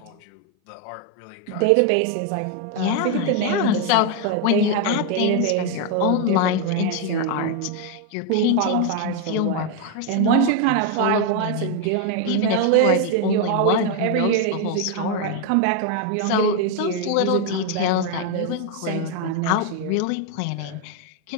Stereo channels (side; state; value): both; different; correlation 0.01